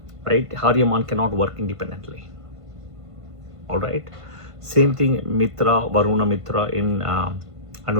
Right? Aryamān cannot work independently. Alright? Same thing, Mitra, Varuna, Mitra in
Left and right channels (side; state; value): left; late; 1.5 ms